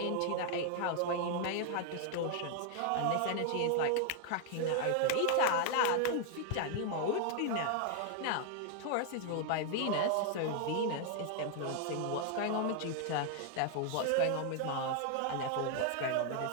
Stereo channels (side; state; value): both; different; correlation 0.00